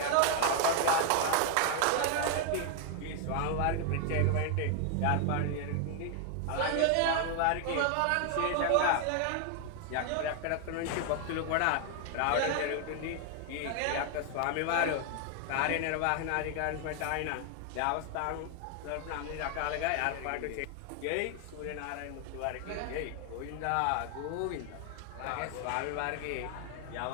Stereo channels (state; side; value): different; both; correlation 0.00